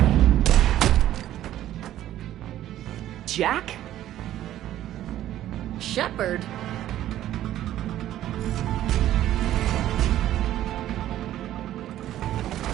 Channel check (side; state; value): left; quieter; 12.9 dB